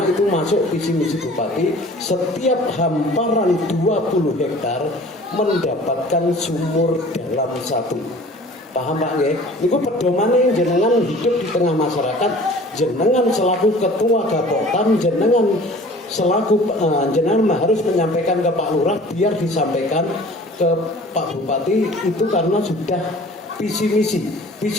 itu masuk visi misi bupati, setiap hamparan 20 hektar mendapatkan sumur dalam 1. Paham Pak nggih? Niku pedomane jenengan hidup di tengah masyarakat, jenengan selaku ketua Gapoktan, jenengan selaku jenengan harus menyampaikan ke Pak Lurah biar disampaikan ke Pak Bupati itu karena sudah visi misi.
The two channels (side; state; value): both; normal; correlation 0.47